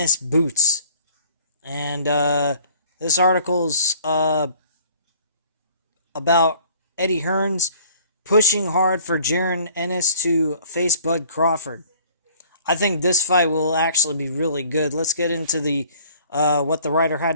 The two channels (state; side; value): inverted; both; correlation -0.54